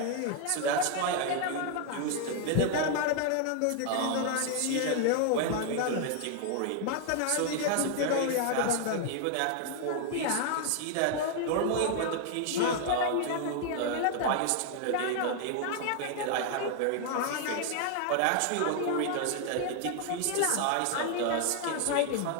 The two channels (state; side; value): different; both; correlation 0.00